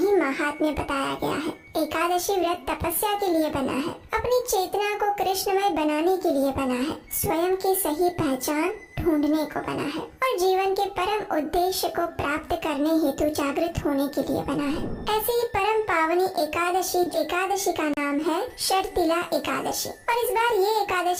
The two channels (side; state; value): both; identical; correlation 1.00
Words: महात्म्य बताया गया है। एकादशी व्रत तपस्या के लिए बना है, अपनी चेतना को कृष्णमय बनाने के लिए बना है, स्वयं की सही पहचान ढूंढने को बना है और जीवन के परम उद्देश्य को प्राप्त करने हेतु जागृत होने के लिए बना है। ऐसे ही परम पावनी एकादशी का नाम है शर्तिला एकादशी और इस बार ये